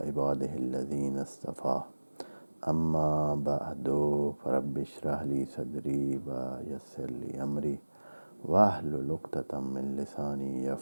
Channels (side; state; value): both; inverted; correlation -1.00